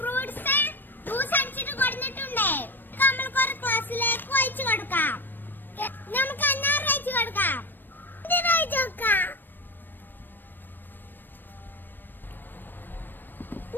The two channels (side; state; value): right; late; 0.093 ms